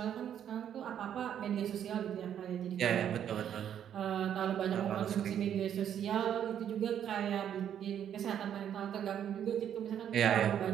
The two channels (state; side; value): quieter; left; 9.5 dB